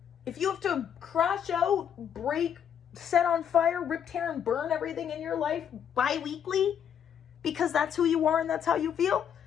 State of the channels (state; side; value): quieter; right; 8.6 dB